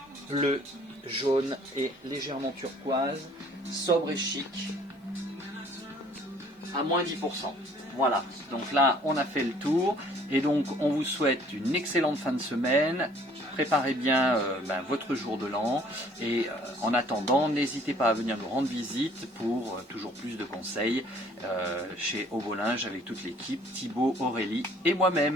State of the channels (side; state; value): both; normal; correlation 0.57